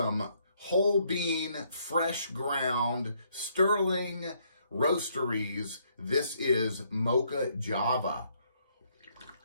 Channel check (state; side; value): inverted; both; correlation -0.70